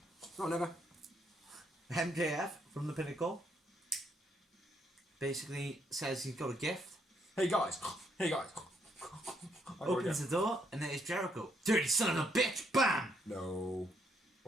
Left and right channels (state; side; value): normal; both; correlation 0.73